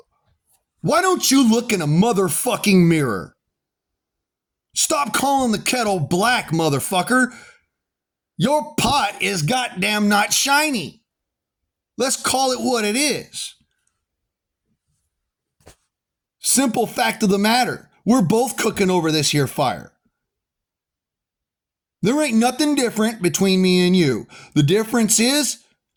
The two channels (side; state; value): both; identical; correlation 1.00